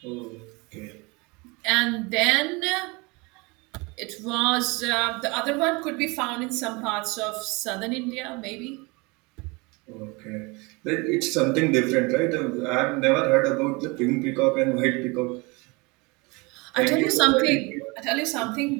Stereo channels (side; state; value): left; quieter; 26.7 dB